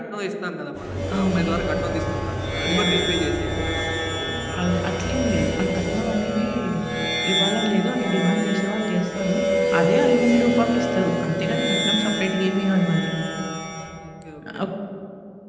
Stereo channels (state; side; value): identical; both; correlation 1.00